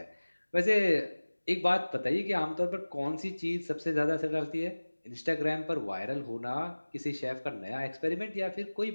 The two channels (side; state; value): both; inverted; correlation -1.00